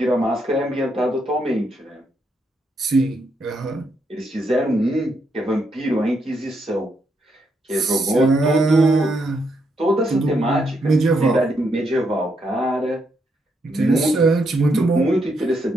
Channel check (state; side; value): normal; both; correlation 0.78